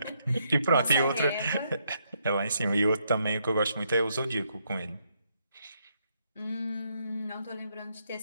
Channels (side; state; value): both; inverted; correlation -0.76